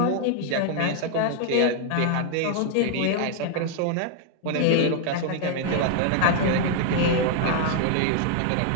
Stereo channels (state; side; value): different; both; correlation 0.00